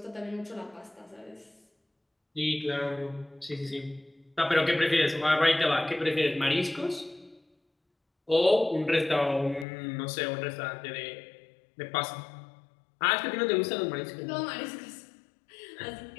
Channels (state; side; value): drops out; right; at 9.7 s